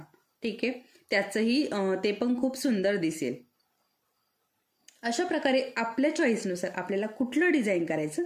ठीक आहे, त्याचंही ते पण खूप सुंदर दिसेल. अशा प्रकारे आपल्या चॉईसनुसार आपल्याला कुठलं डिझाईन करायचं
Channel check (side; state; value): both; identical; correlation 1.00